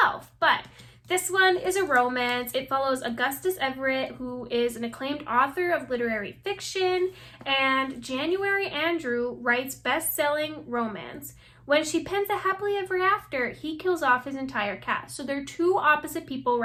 but this one is a romance. It follows Augustus Everett, who is an acclaimed author of literary fiction, and January Andrew writes best-selling romance. When she pens a happily ever after, he kills off his entire cast. So they're two opposite people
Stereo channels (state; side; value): identical; both; correlation 1.00